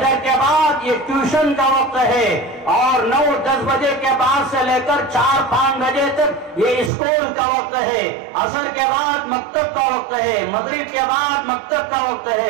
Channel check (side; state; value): left; drops out; at 6.9 s